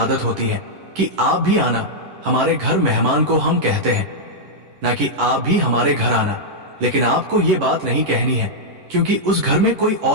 होती है कि आप भी आना हमारे घर, मेहमान को हम कहते हैं, ना कि आप भी हमारे घर आना, लेकिन आपको ये बात नहीं कहनी है, क्योंकि उस घर में कोई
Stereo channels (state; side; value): late; left; 11 ms